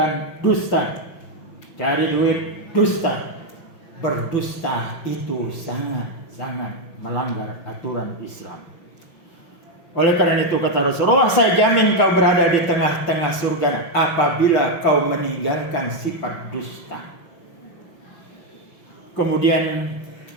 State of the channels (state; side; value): late; right; 5.8 ms